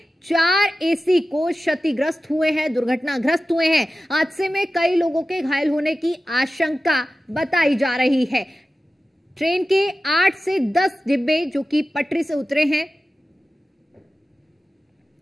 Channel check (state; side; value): normal; both; correlation 0.94